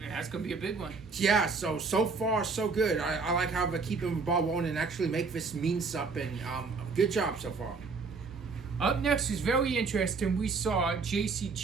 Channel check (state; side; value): quieter; left; 4.5 dB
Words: that's going to be a big one. Yeah, so far, so good. I like how they're keeping the ball rolling and actually make this mean something. Good job so far. Up next is very interesting. We saw JC